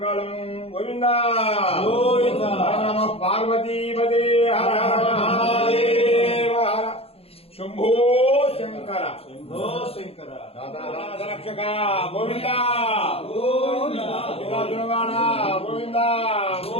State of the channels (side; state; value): right; late; 0.28 ms